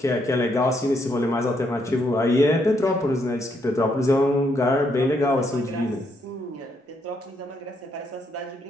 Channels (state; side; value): normal; both; correlation 0.75